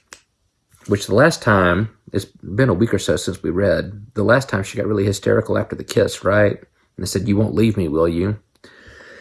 Which the last time, it's been a week or so since we read, the last time she got really hysterical after the kiss, right? And I said, you won't leave me, will you?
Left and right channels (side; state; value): both; identical; correlation 1.00